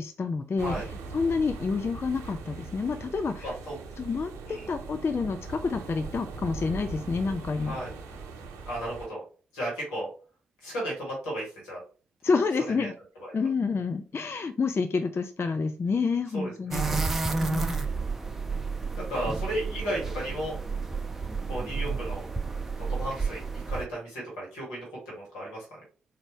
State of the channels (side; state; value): both; normal; correlation 0.82